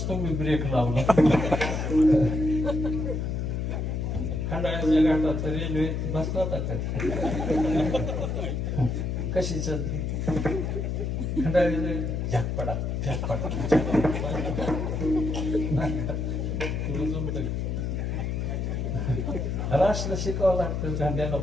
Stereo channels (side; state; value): left; noise; hum, 1 dB below the sound